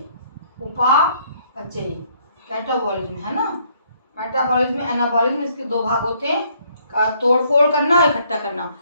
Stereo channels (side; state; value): both; inverted; correlation -0.66